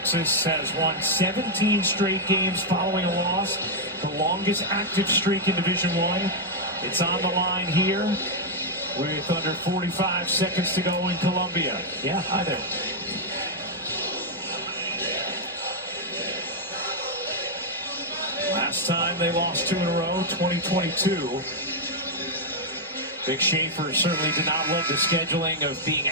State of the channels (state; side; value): normal; both; correlation -0.02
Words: has won 17 straight games following a loss. The longest active streak in Division I. It's on the line here with under 45 seconds to go in Columbia. Yeah, hi there. Last time they lost 2 in a row, 2022. Big Schaefer certainly did not love the scheduling of being